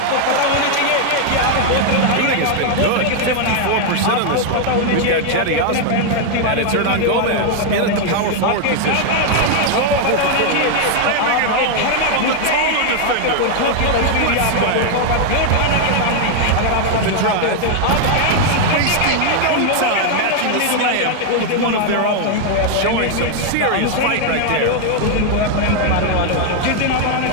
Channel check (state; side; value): different; both; correlation 0.00